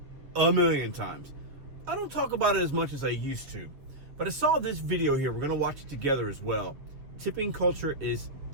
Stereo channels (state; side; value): late; left; 7.0 ms